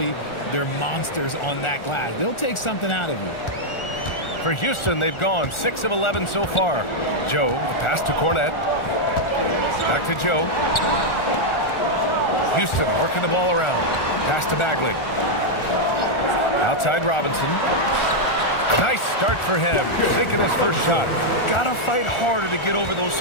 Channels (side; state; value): right; late; 1.4 ms